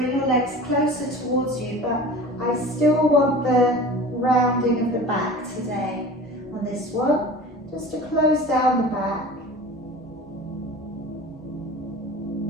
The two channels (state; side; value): normal; both; correlation 0.38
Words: your legs closer towards you, but I still want the rounding of the back today on this one, just to close down the back.